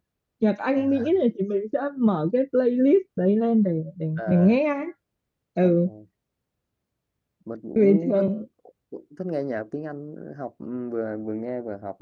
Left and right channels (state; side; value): identical; both; correlation 1.00